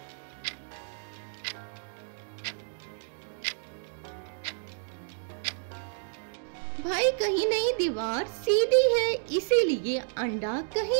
भाई कहीं नहीं, दीवार सीधी है इसीलिए अंडा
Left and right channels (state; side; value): silent; left; digital silence